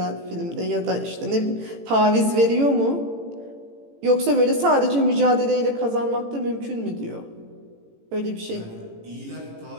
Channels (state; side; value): late; left; 18 ms